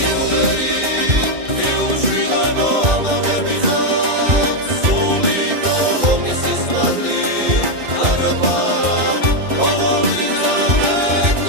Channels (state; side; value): late; left; 2.4 ms